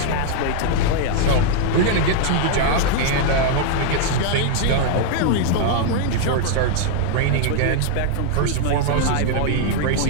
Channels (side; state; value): both; different; correlation 0.00